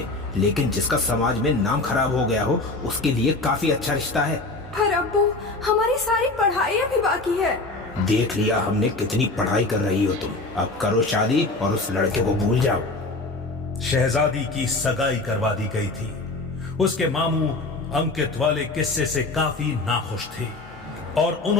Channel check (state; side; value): quieter; right; 3.2 dB